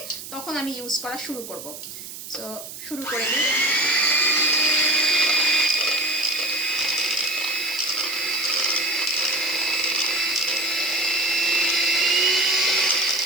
তখন আমি ইউজ করা শুরু করব। সো শুরু করে দিই।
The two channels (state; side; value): noise; right; hiss, 12 dB below the sound